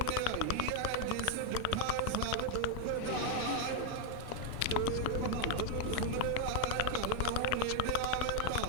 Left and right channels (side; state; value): both; different; correlation 0.00